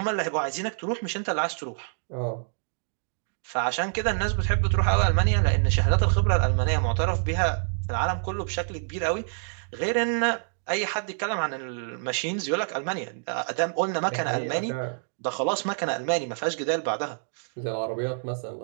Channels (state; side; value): silent; left; digital silence